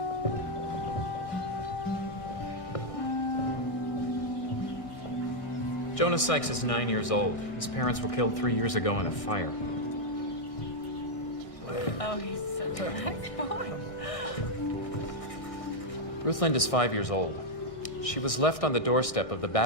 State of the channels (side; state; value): right; late; 1.6 ms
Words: Jonas Sykes is 9 years old. His parents were killed 3 years ago in a fire. Oh, he's such a nice boy. Ruth Lind is 5 years old. She was left on the doorstep of the